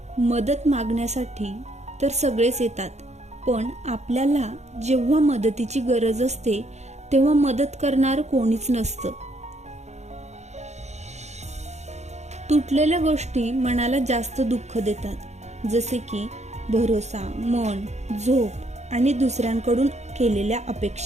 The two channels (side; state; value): left; late; 0.33 ms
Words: मदत मागण्यासाठी तर सगळेच येतात, पण आपल्याला जेव्हा मदतीची गरज असते तेव्हा मदत करणार कोणीच नसतं. तुटलेल्या गोष्टी मनाला जास्त दुःख देतात, जसे की भरोसा, मन, झोप आणि दुसऱ्यांकडून केलेल्या